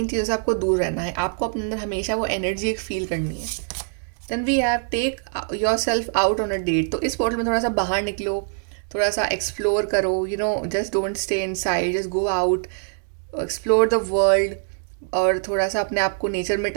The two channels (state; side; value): silent; left; digital silence